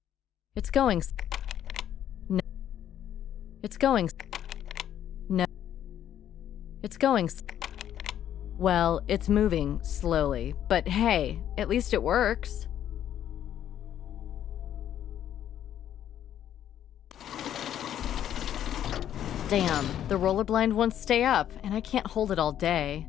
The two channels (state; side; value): quieter; right; 10.6 dB